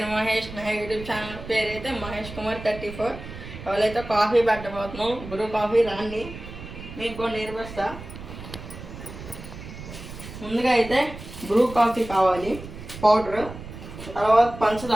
మహేష్. నా యూట్యూబ్ ఛానల్ పేరు అయితే మహేష్ కుమార్ 34. ఎవరైతే కాఫీ పెట్టబోతున్నాం, బ్రూ కాఫీ రాండి, మీకు కొన్ని నేర్పిస్తా. ముందుగా అయితే బ్రూ కాఫీ కావాలి, పౌడర్, తర్వాత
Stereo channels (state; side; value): noise; right; rumble, 12 dB below the sound